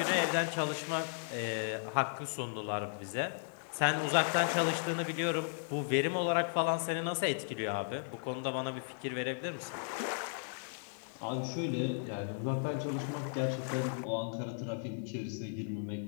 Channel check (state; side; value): silent; right; digital silence